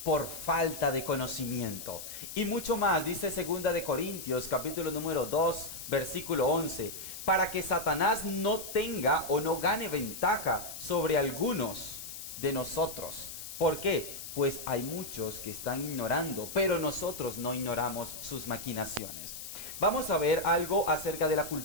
por falta de conocimiento. Y mucho más, dice segunda de Corintios, capítulo número 2, versículo 11, para que Satanás no tenga o no gane ventaja sobre algunos de nosotros. ¿Por qué? pues hay muchos que están ignorando, pero nosotros no ignoramos sus maquinaciones. Vamos a ver algo acerca de la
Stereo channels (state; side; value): noise; left; hiss, 10 dB below the sound